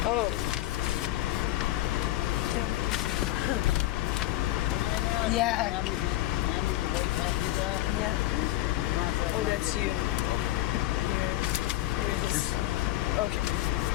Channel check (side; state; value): right; quieter; 15.7 dB